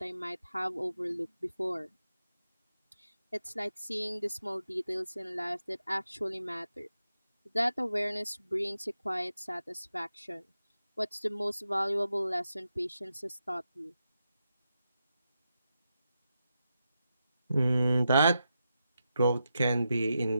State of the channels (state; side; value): inverted; both; correlation -0.87